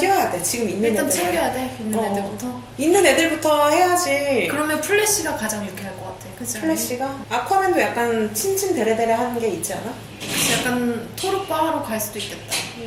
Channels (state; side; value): identical; both; correlation 1.00